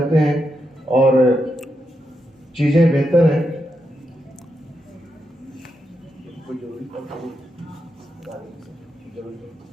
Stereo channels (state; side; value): normal; both; correlation 0.84